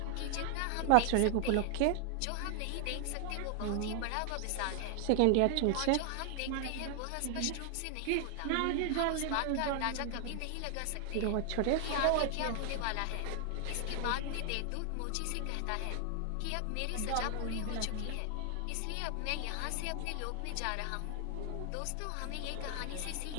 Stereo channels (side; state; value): both; different; correlation 0.00